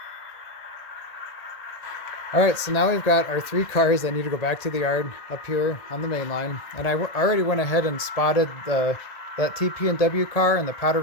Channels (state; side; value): late; right; 1.7 ms